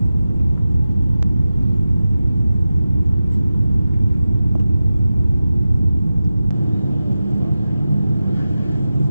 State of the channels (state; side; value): inverted; both; correlation -0.94